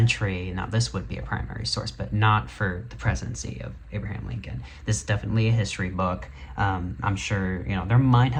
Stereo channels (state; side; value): identical; both; correlation 1.00